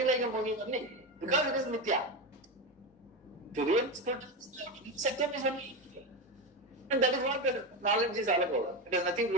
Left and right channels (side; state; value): both; normal; correlation 0.17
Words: like a movie only. Because it is Mithya. To real Satyam is only Mithya. And that is what the knowledge is all about. It has nothing to